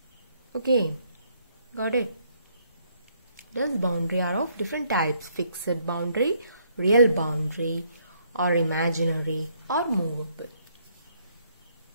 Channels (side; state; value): both; inverted; correlation -0.69